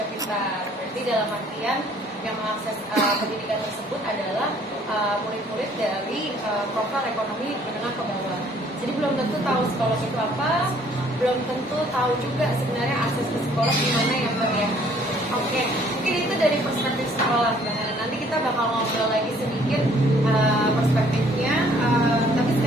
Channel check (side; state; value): both; normal; correlation 0.59